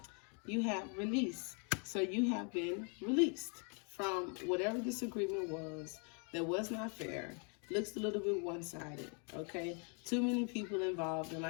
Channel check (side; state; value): right; quieter; 37.7 dB